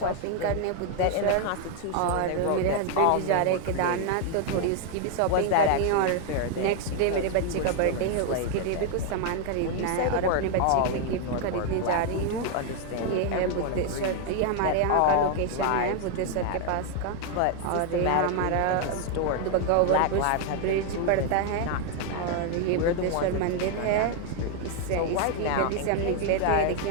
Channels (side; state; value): both; different; correlation 0.01